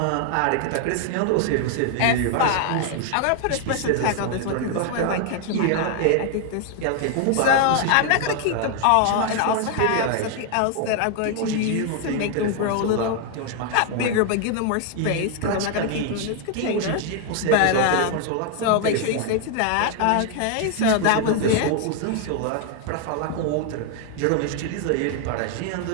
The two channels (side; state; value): both; different; correlation 0.00